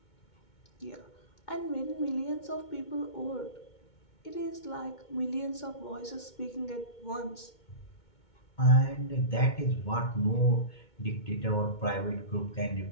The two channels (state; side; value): late; right; 2.2 ms